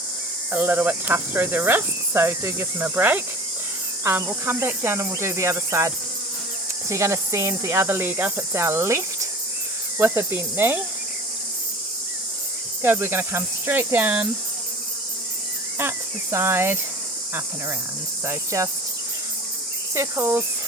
a little bit tough through the wrist, so do give them a break. We'll come back down and we'll do the other side. So you're going to send the other leg up. It's our left with a bent knee. good. We're going to come straight down, out to the side, up and around. So just circles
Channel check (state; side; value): normal; both; correlation 0.40